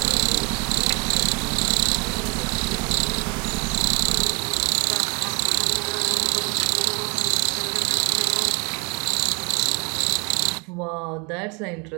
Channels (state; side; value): quieter; left; 31.6 dB